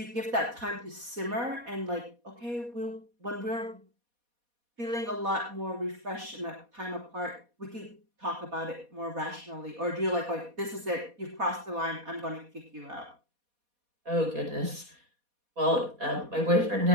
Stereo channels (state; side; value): late; left; 4.2 ms